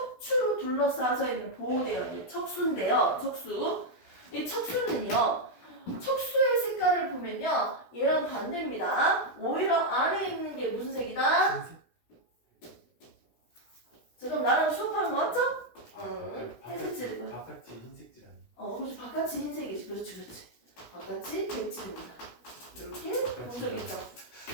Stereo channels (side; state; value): right; late; 16 ms